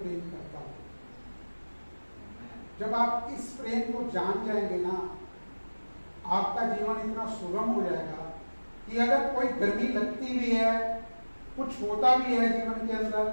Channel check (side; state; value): both; inverted; correlation -1.00